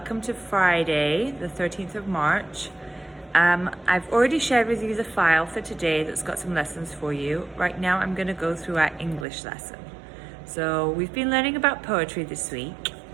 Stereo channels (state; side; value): drops out; left; at 9.2 s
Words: to Friday, the 13th of March. I've already shared with you the file for today that's got some lessons for you. Right now, I'm going to go through our English lesson. So we've been learning about poetry this week,